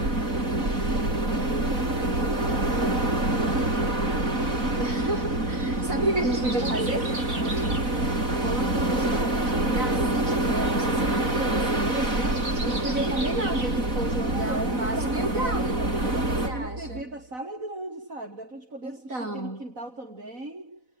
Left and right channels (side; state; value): left; late; 4.0 ms